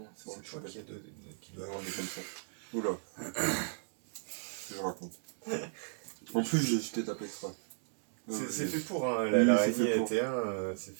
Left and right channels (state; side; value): silent; left; digital silence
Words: c'est vrai, C'est je toi suis qui, bête. qui doit Ouais, on est comme ça. Oula. Qu'est-ce que je raconte. En plus, je t'ai tapé exprès. C'est fait pour, hein, Oui, l'araignée c'est fait pour. était un, c'est